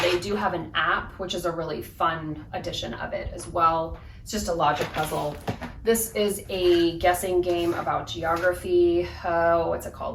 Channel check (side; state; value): both; identical; correlation 1.00